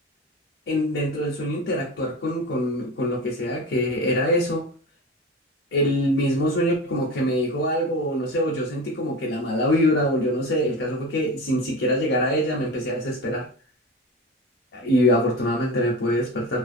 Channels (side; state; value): both; normal; correlation 0.29